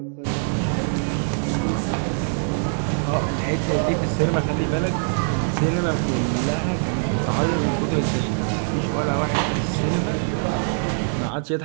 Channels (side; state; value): left; silent; digital silence